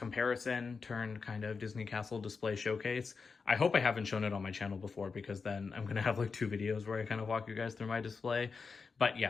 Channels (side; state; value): right; quieter; 4.9 dB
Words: turned kind of Disney Castle display showcase. I hope I haven't shown it on my channel before, because then I'm going to have like 2 videos where I kind of walk you guys through my display. But